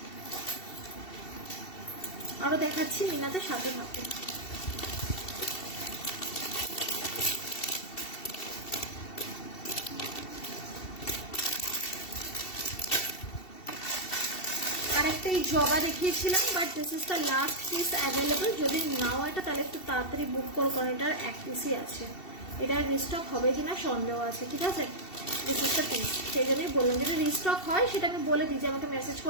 আরো দেখাচ্ছি মিনাতে, সাথে থাকো। আর একটা এই জবা দেখিয়েছিলাম, but this is the last piece available. যদি নাও এটা, তাহলে একটু তাড়াতাড়ি বুক করো, কারণ এটার এক পিসই আছে। এটার রিস্টক হবে কিনা সন্দেহ আছে, ঠিক আছে? দিস ইজ দ্য পিস, সেই জন্যই বললাম, যদি রিস্টক হয় সেটা আমি বলে দিই, যে আমাকে মেসেজ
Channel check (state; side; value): late; right; 2.7 ms